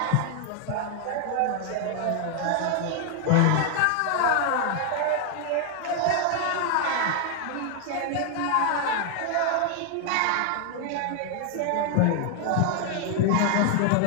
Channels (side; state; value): both; different; correlation 0.00